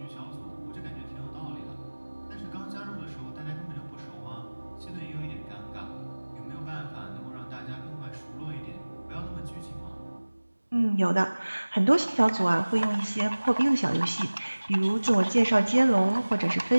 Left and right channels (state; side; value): inverted; both; correlation -1.00